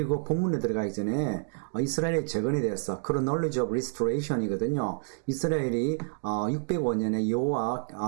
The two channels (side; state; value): left; silent; 59 dB below the other